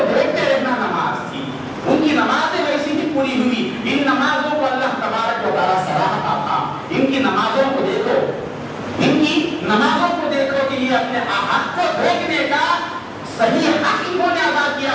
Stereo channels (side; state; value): both; identical; correlation 1.00